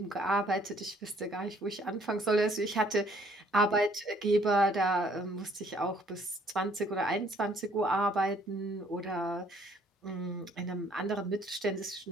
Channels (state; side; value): normal; both; correlation 0.62